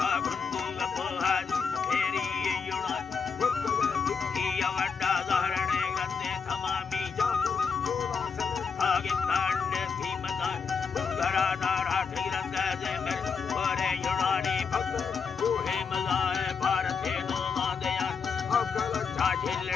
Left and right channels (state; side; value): quieter; right; 5.7 dB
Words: गुंदू गपोहा फेरी युणान किया वड्डा जहरने गंदे तमामी आगे तांडे कीमतान गरा नारा ठिरंग जे मेरे और युणानी भक्त कोहे मलाए भारत